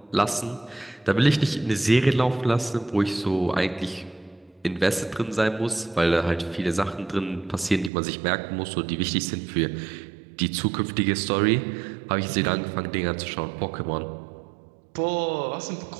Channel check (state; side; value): drops out; left; at 7.9 s